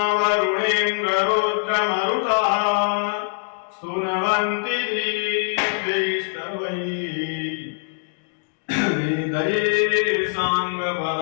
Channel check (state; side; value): silent; right; digital silence